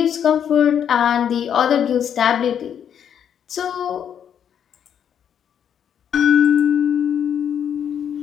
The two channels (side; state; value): right; quieter; 8.7 dB